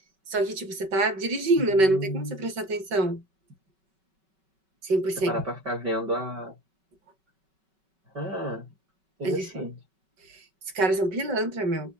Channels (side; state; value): left; late; 5.3 ms